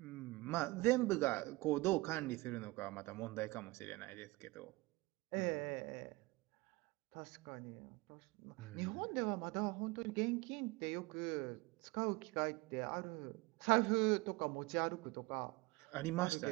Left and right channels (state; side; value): quieter; left; 22.6 dB